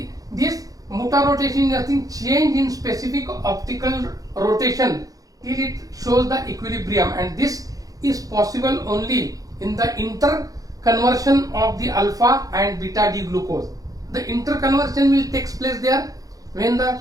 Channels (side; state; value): left; late; 0.17 ms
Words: this mutarotation is nothing, change in specific optical rotation till it shows the equilibrium, and this is possible only in the interconversion of the alpha and beta D glucose. The interconversion will take place there when the